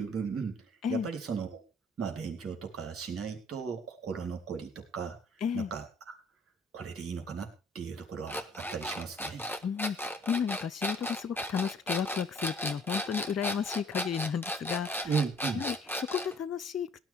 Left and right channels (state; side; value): normal; both; correlation 0.56